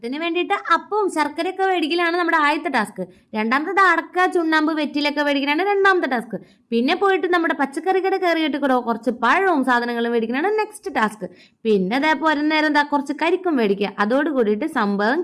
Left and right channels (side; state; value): both; identical; correlation 1.00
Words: വേണ്ടിയിട്ട് അപ്പവും ശർക്കരയൊക്കെ മേടിക്കലാണ് നമ്മുടെ ആദ്യത്തെ ടാസ്ക്. രണ്ടാമത്തെ അടക്ക, ചുണ്ണാമ്പ്, വെറ്റിലൊക്കെ മേടിക്കലാണ് രണ്ടാമത്തെ ടാസ്ക്. പിന്നെ പോയിട്ട് നമ്മുടെ പച്ചക്കറി കട കയറിയിട്ട് കൂടെ കുറച്ച് പഴവും സാധനങ്ങളും മേടിക്കണതാണ് നെക്സ്റ്റ് ടാസ്ക്. പിന്നെ അതേപോലെ നേരം കുറച്ച് കരിക്കും മേടിക്കുക. അതോട് കൂടിയിട്ട് സംഭവം